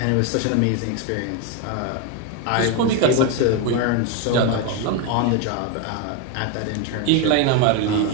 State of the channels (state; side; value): different; both; correlation 0.02